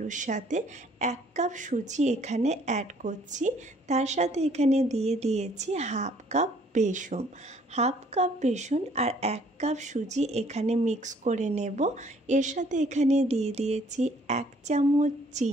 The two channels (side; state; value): both; normal; correlation 0.61